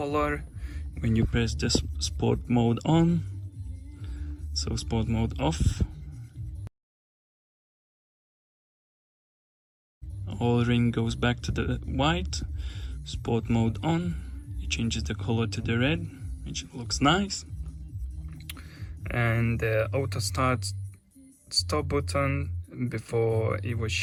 when you press the sport mode on. So sport mode off, all ring goes back to the white. Sport mode on, it changes the color to the red, which looks nice. And the auto start stop button, before it was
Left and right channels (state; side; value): identical; both; correlation 1.00